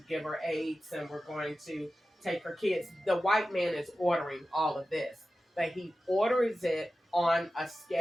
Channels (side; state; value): both; normal; correlation 0.94